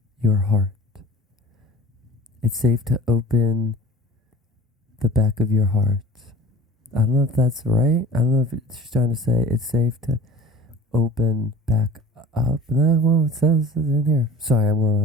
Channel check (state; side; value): normal; both; correlation 0.43